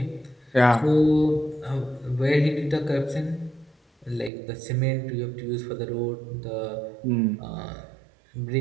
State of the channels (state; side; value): drops out; left; at 4.3 s